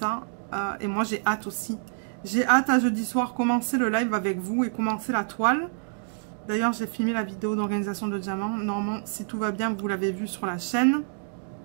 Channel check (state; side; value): silent; left; digital silence